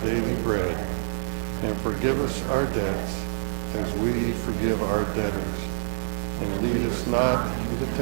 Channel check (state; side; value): silent; left; digital silence